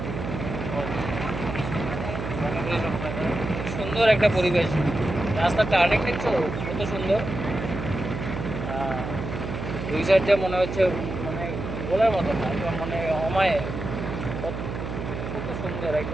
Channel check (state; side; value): noise; right; hum, 6 dB below the sound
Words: মণিপুরি সম্প্রদায়। সুন্দর একটা পরিবেশ, রাস্তার টার্নিং দেখছো কত সুন্দর। দুই সাইড দিয়ে মনে হচ্ছে, মানে বলার মতো না, একদম মানে অমায়, কত সুন্দর